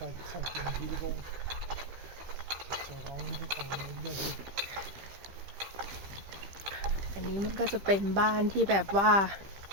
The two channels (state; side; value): late; left; 15 ms